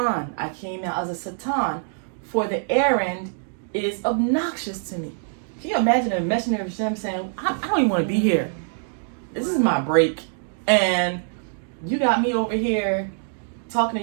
I came out as a Satan, for the errand is obnoxious to me." Can you imagine a messenger of Hashem saying, I don't even want to be here. This is my break. And you got me over here talking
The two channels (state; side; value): silent; left; digital silence